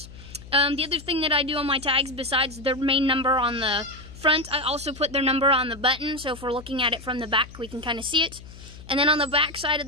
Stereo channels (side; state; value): left; noise; hum, 17 dB below the sound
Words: The other thing that I do on my tags, besides their main number on the front, I also put their number on the button. So if we're looking at it from the back, we can kind of see it. And then on the back side of